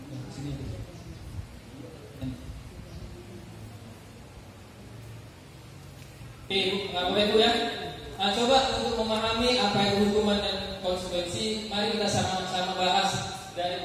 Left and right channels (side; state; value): both; identical; correlation 1.00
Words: Sini. Oke, Bapak Ibu ya. Nah, coba untuk memahami apa itu hukuman dan konsekuensi, mari kita sama-sama bahas